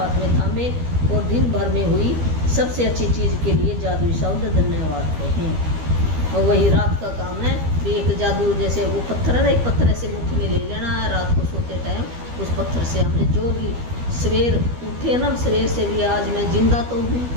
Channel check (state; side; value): late; left; 12 ms